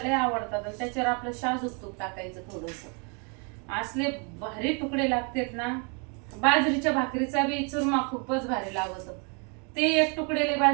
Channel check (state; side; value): quieter; left; 35.9 dB